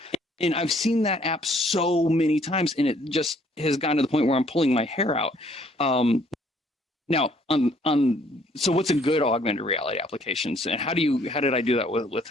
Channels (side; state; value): both; normal; correlation 0.63